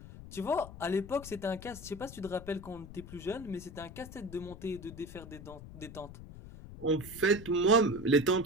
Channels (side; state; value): left; noise; rumble, 14 dB below the sound